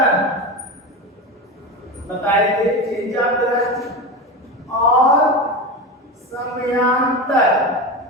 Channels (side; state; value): both; normal; correlation 0.23